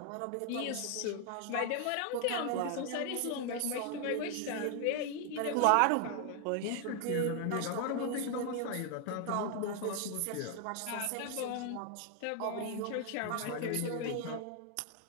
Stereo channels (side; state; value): both; different; correlation 0.01